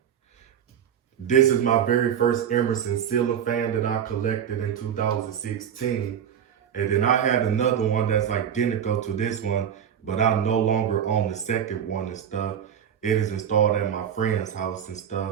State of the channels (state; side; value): quieter; left; 8.8 dB